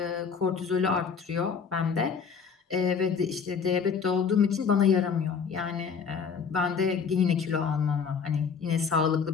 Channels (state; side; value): quieter; right; 6.1 dB